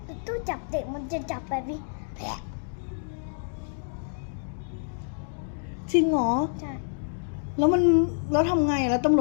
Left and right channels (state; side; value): silent; right; digital silence